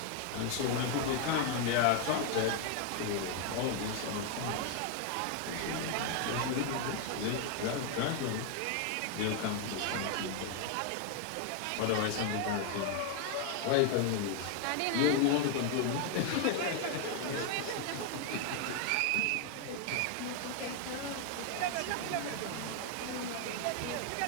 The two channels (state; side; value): different; both; correlation 0.00